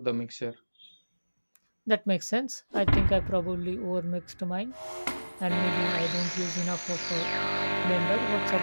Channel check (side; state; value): both; inverted; correlation -1.00